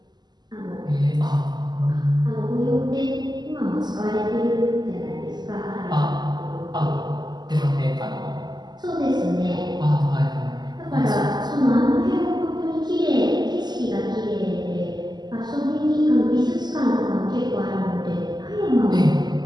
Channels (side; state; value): left; late; 0.21 ms